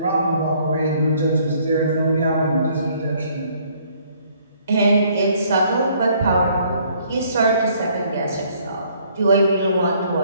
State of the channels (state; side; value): inverted; both; correlation -0.63